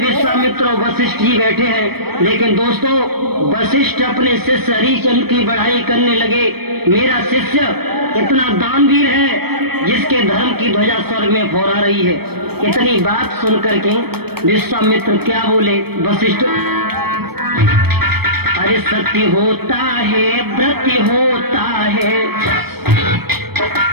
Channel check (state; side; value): late; left; 0.97 ms